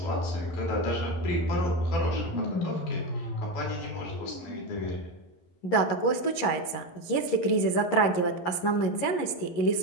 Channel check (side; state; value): right; late; 11 ms